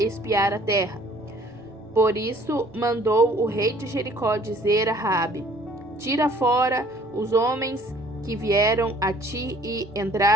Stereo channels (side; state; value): both; normal; correlation 0.56